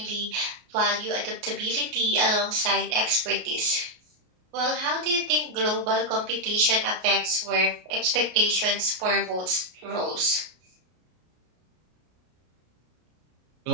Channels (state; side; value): late; left; 33 ms